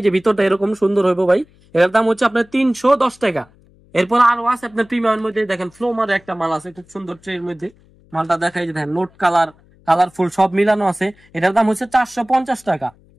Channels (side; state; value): left; noise; hum, 30 dB below the sound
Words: যে ভিতরটা এরকম সুন্দর হইব ভাই। এটার দাম হচ্ছে আপনার 310 টাকা। এরপর আরো আছে আপনার প্রিমিয়ামের মধ্যে, দেখেন ফ্লোমার একটা মাল আছে খুব সুন্দর ট্রের মধ্যে, মালটা দেখাই যে দেখেন নোট কালারফুল সব মিলানো আছে, এটার দাম হচ্ছে 450 টাকা।